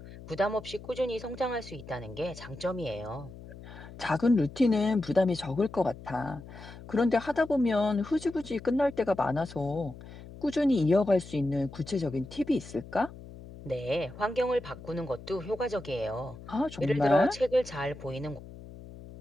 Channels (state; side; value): noise; left; hum, 16 dB below the sound